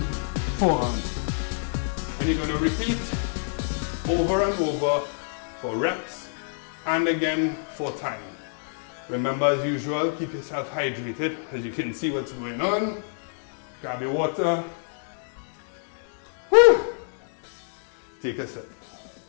forearms. And you're going to repeat over and over for reps and again for time. Remember, as usual, keep yourself hydrated, as you can see what's going on. Grab your water. Woo! Take a sip.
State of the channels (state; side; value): silent; right; digital silence